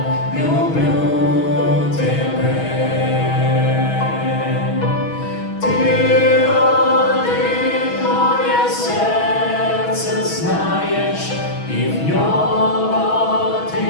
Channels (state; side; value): late; right; 6.2 ms